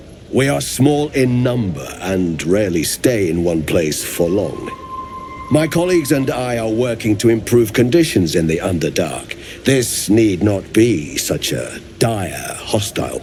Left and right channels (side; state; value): both; identical; correlation 1.00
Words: We are small in number and rarely stay in one place for long. My colleagues and I are working to improve conditions in the Underdark. This need not be such a dire, hostile